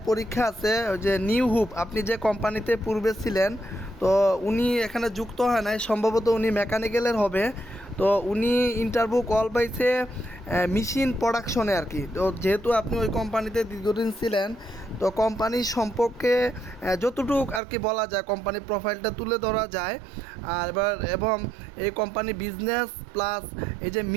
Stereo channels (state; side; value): drops out; left; at 17.6 s